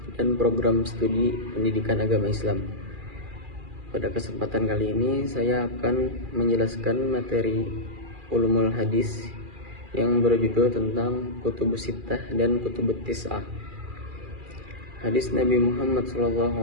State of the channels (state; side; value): late; left; 2.4 ms